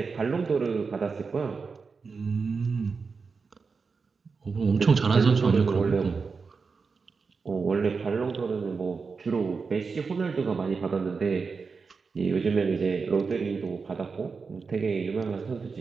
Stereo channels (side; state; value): left; quieter; 4.9 dB